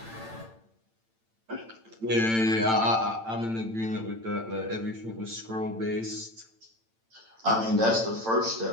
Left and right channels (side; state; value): left; late; 8.9 ms